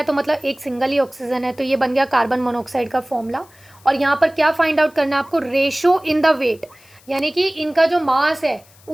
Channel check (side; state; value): left; noise; hiss, 27 dB below the sound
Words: तो मतलब एक सिंगल ही ऑक्सीजन है, तो ये बन गया कार्बन मोनोऑक्साइड का फॉर्मूला। और यहाँ पर क्या फाइंड आउट करना है आपको, रेशो इन द वेट, यानी कि इनका जो मास है